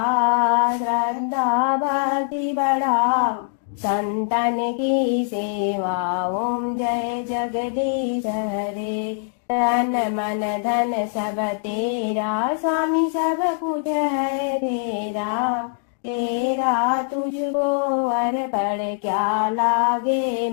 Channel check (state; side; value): silent; right; digital silence